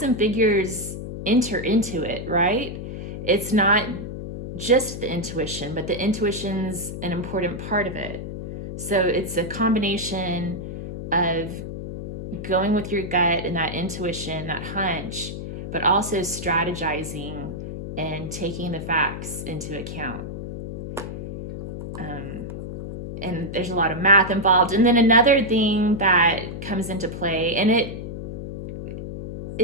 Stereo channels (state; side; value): noise; left; hum, 8 dB below the sound